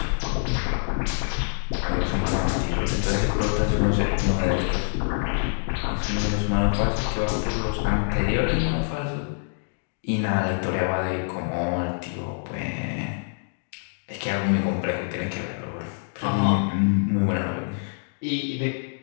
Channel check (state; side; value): silent; right; digital silence